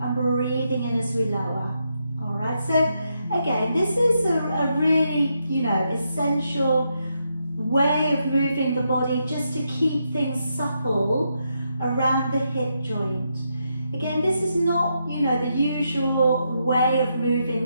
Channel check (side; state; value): both; inverted; correlation -0.81